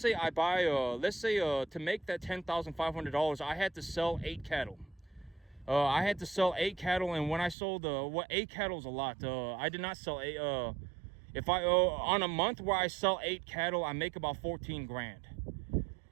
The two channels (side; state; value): left; drops out; at 7.6 s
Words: to make that $10,500, I had to sell 8 cattle. I had to sell 8 cattle, and when I sold 8 cattle is a lot. I did not sell 8. If I on a month where I sell 8 cattle, I make about 14 grand.